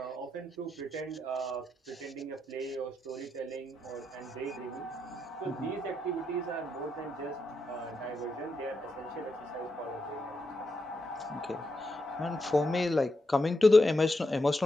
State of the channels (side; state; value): both; normal; correlation 0.84